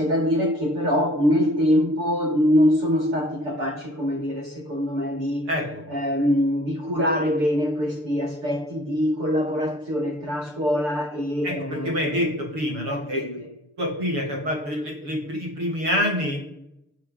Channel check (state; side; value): late; left; 6.8 ms